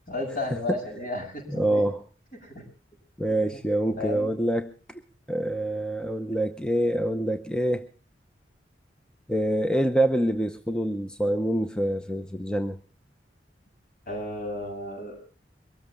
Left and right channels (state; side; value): normal; both; correlation 0.85